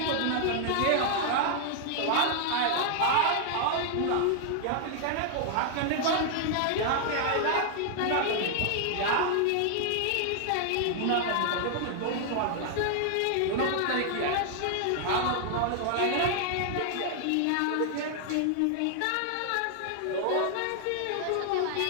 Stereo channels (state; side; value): different; both; correlation 0.00